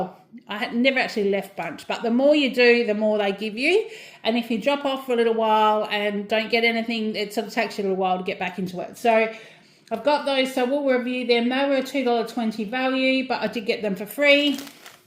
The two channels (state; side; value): identical; both; correlation 1.00